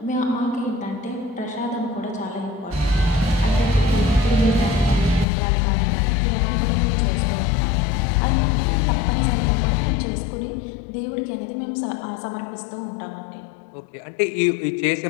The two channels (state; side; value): drops out; right; at 5.2 s